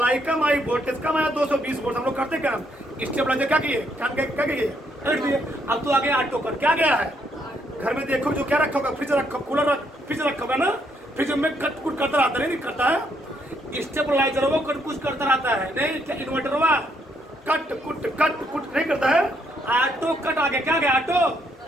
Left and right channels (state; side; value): normal; both; correlation 0.73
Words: कम आई वोल्टेज कम आया 220 वोल्ट। हम लोग करते क्या स्टेबलाइजर क्या किए क्या किए रख दिए। अब तो आगे ऑटो पर क्या गया है घर में देखो जो क्या रखा होगा फ्रिज रखा कूलर फ्रिज रखा होगा ना, फ्रिज में कट कुट करता रहता नहीं करता है। स्टेबलाइजर वो कट कुछ करता रहता है नहीं क्या इन्वर्टर हुआ कट कुट नहीं करता है। ऑटो कट आ गया क्या गया ऑटो